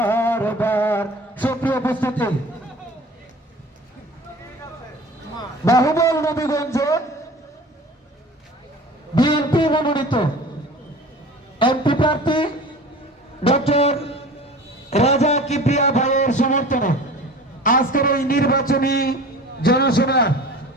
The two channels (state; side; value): normal; both; correlation 0.40